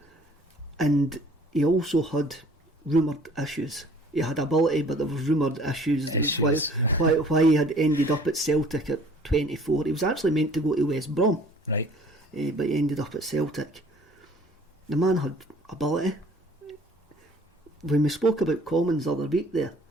and he also had rumoured issues. He had ability, but there was rumoured issues. Why he had ended up at Celtic at 24. He was actually meant to go to West Brom, right? But he ended up at Celtic. The man had ability. When we spoke about Commons the other week there,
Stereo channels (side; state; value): both; normal; correlation 0.53